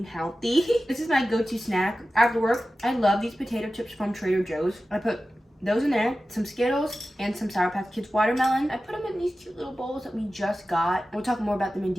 healthy. This is my go-to snack after work. I love these potato chips from Trader Joe's. I put those in there, some Skittles, and some Sour Patch Kids watermelon. I put them in these cute little bowls that we just got. We'll talk more about them in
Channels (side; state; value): both; normal; correlation 0.94